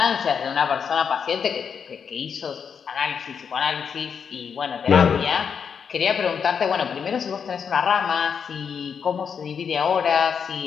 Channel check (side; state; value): right; quieter; 6.8 dB